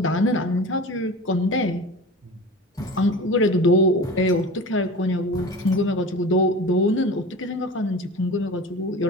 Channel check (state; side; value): normal; both; correlation 0.35